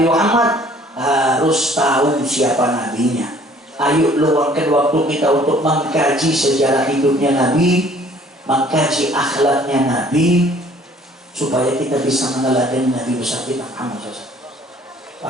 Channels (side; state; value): both; normal; correlation 0.56